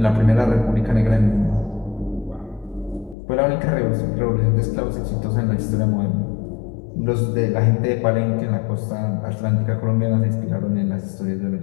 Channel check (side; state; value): right; drops out; at 3.2 s